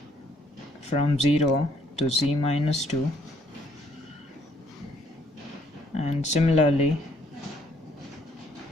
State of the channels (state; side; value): normal; both; correlation 0.66